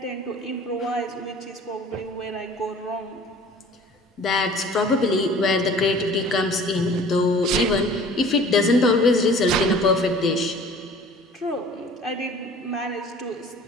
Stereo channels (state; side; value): normal; both; correlation 0.47